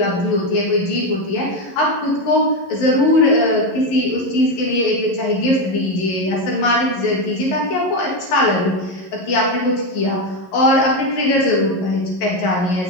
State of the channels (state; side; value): late; right; 11 ms